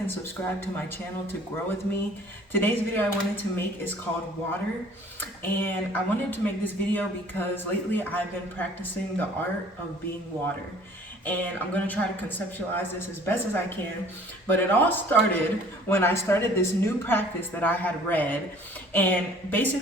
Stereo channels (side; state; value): both; normal; correlation 0.52